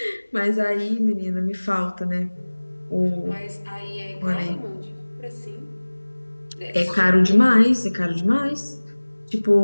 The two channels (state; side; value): inverted; both; correlation -1.00